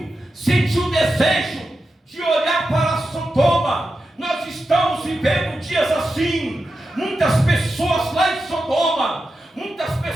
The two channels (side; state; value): both; normal; correlation 0.90